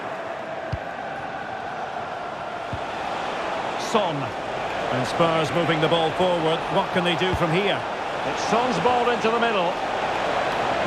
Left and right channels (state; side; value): identical; both; correlation 1.00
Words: Son. And Spurs moving the ball forward. What can they do from here? It's Son's ball into the middle.